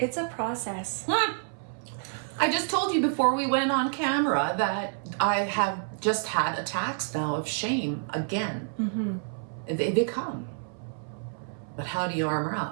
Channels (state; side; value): silent; left; 58 dB below the other